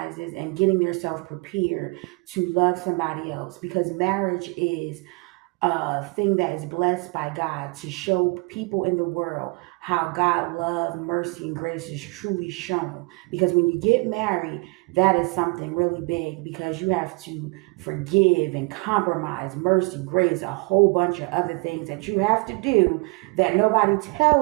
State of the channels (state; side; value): quieter; left; 29.0 dB